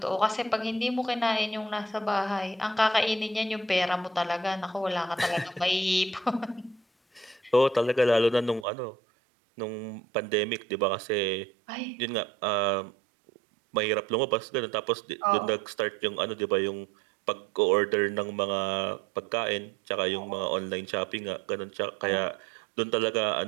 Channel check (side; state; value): left; drops out; at 8.7 s